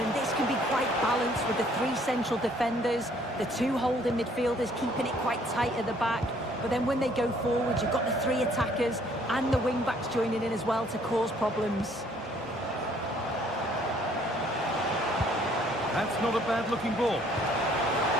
this can be quite balanced with the three central defenders, the two holding midfielders keeping it quite tight at the back. But then when they go forward, you've got the three attackers and the wing-backs joining in as well to cause problems. That's not a bad-looking ball.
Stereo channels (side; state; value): both; normal; correlation 0.62